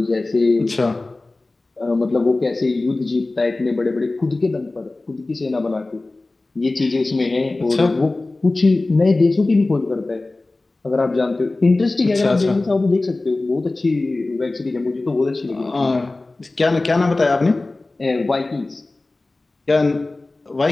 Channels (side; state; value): right; quieter; 3.1 dB